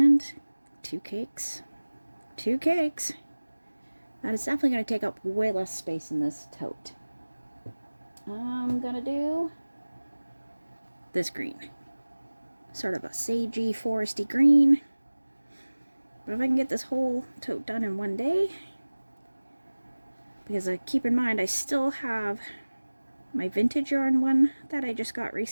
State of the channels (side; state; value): both; inverted; correlation -1.00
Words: 2 cakes. 2 cakes. That is definitely going to take up way less space in this tote. I'm going to do this green. Sort of a sagey, foresty green. But if I can get this whole tote done in one day, because keep in mind I still have my vintage yarn one that I just got